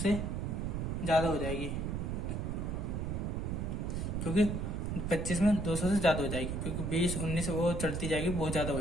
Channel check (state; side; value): noise; right; rumble, 2 dB below the sound